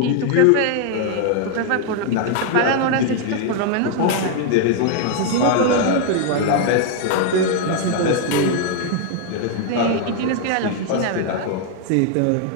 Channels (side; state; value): both; different; correlation 0.00